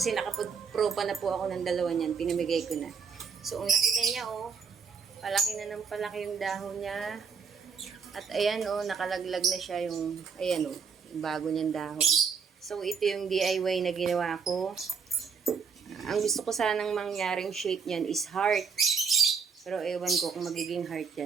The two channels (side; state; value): left; quieter; 5.9 dB